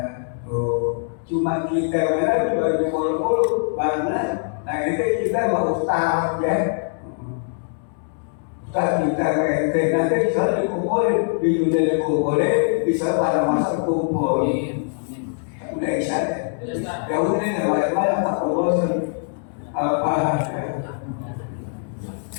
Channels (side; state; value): right; silent; digital silence